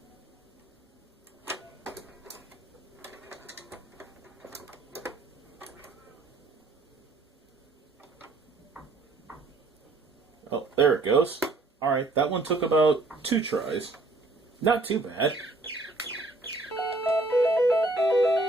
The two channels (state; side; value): quieter; left; 3.1 dB